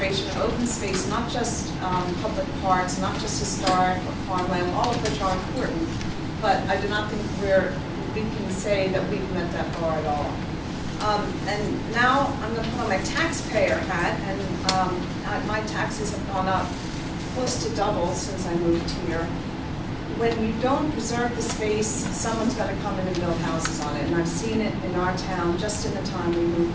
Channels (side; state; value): both; identical; correlation 1.00